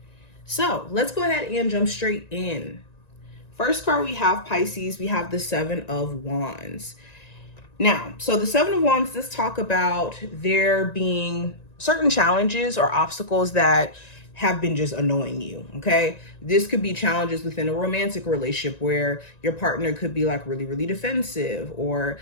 So let's go ahead and jump straight in. First card we have, Pisces, we have the 7 of Wands. Now, so the 7 of Wands, let's talk about there being certain challenges or obstacles that have been just annoying you, okay? This could be challenges within a romantic relationship where your partner could be like really, really defensive, or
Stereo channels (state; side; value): late; right; 1.9 ms